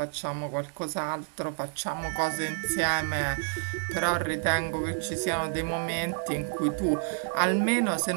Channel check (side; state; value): left; silent; 59 dB below the other